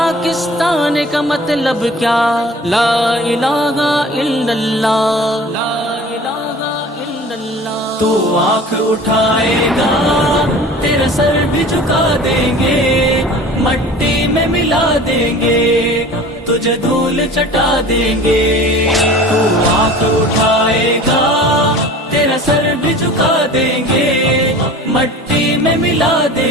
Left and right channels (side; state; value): both; normal; correlation 0.42